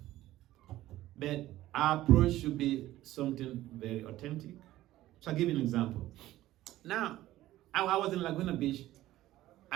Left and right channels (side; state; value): left; quieter; 15.2 dB